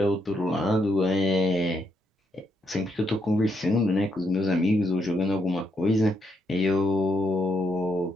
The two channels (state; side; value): normal; both; correlation 0.77